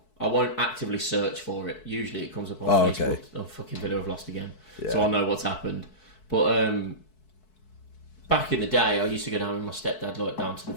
I won't actively search for it. Usually it comes up on Oh, Facebook. okay. Oh, fucking Villa have lost again. Yeah. So I'll know what's happened. But back in the day, I used to go down with my stepdad, like down to the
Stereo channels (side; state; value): right; late; 4.6 ms